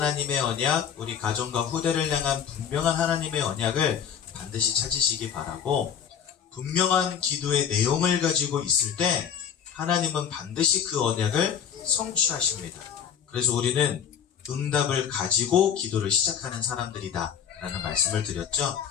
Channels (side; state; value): right; quieter; 8.2 dB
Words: 언약, 우리 가정과 후대를 향한 분명한 하나님의 언약을 반드시 찾으시기 바라고, 분명한 기도의 내용을 가지고 있을 때 하나님은 반드시 그 언약을 성취하십니다. 그래서 우리는 응답을 가지고 기도를 시작하는 사람들이다 라는 말씀을 드렸죠.